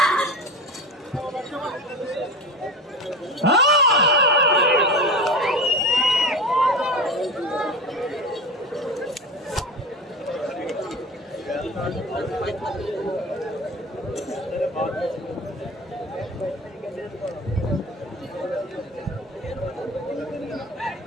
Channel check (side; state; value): both; normal; correlation 0.29